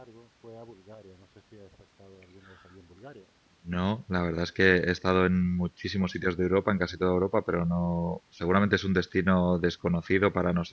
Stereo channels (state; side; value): identical; both; correlation 1.00